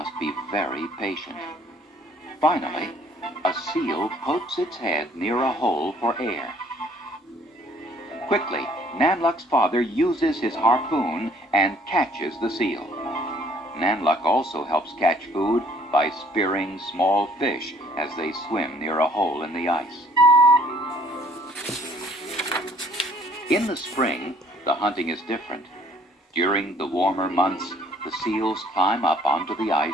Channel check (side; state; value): both; normal; correlation 0.59